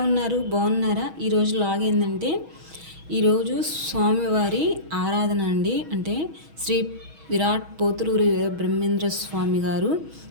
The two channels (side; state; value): left; late; 6.3 ms